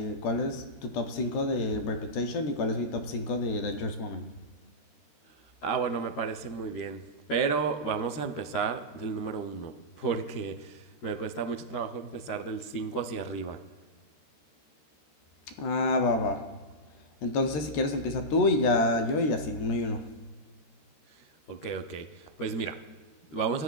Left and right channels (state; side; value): late; right; 13 ms